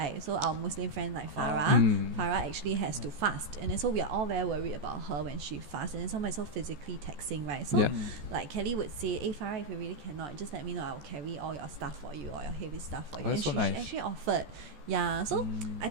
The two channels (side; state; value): left; late; 14 ms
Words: So our Muslim friend like Farah actually has to fast, and then so we are all very worried about her when she fasts, and then somebody's so physically taxing, right? So like Kelly would say, hey Farah, if you really cannot, just let me know, I'll carry all your stuff for you, all your heavy stuff for you. that's And so she nice. actually offered. Yeah, so I